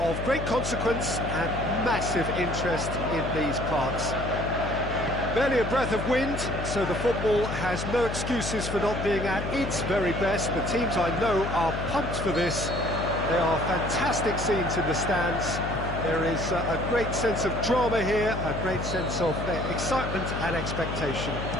great consequence and massive interest in these parts. Barely a breath of wind, so the football has no excuses for not being at its very best. The teams I know are pumped for this. There are fantastic scenes in the stands. There is a great sense of drama here, a great sense of excitement and expectation.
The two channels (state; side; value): noise; left; hum, 5 dB below the sound